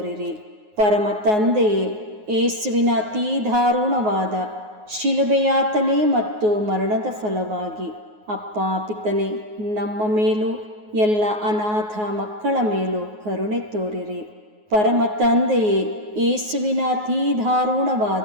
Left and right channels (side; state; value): left; late; 9.5 ms